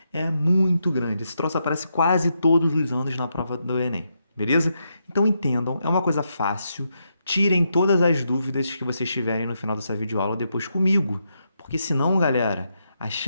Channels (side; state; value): both; inverted; correlation -0.82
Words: é muito grande. Esse troço aparece quase todos os anos na prova do Enem, beleza? Então entendam, é uma coisa fácil. Tirem todas as dúvidas que vocês tiverem no final dessa videoaula depois comigo, porque senão, galera, a